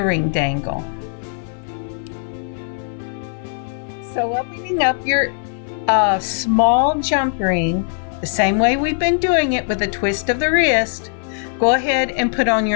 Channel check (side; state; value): right; silent; 57 dB below the other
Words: dangle. So opening up your small jump ring the same way we've been doing it with a twist of the wrist, go ahead and put on